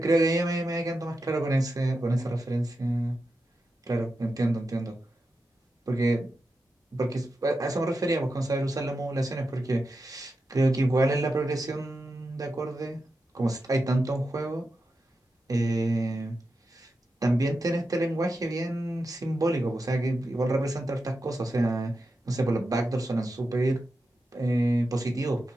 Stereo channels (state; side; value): normal; both; correlation 0.89